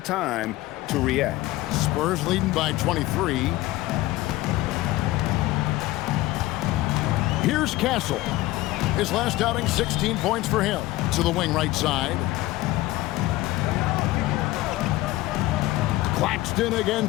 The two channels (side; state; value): right; quieter; 17.7 dB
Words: to react. Spurs leading by 23. Here's Castle. His last outing, 16 points for him. To the wing right side. Claxton